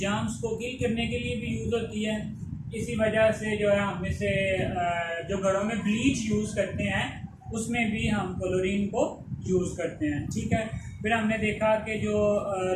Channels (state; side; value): identical; both; correlation 1.00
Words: को किल करने के लिए भी यूज़ होती है। इसी वजह से जो है हम इसे जो घरों में ब्लीच यूज़ करते हैं उसमें भी हम क्लोरीन को यूज़ करते हैं। ठीक है, फिर हमने देखा कि जो